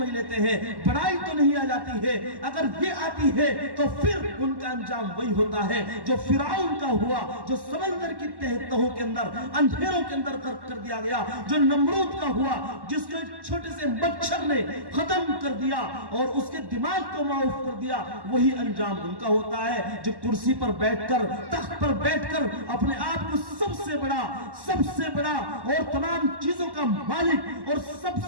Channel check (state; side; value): late; left; 1.1 ms